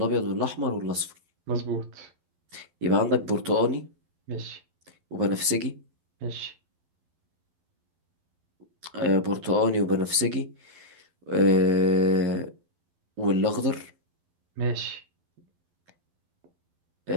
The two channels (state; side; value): late; left; 12 ms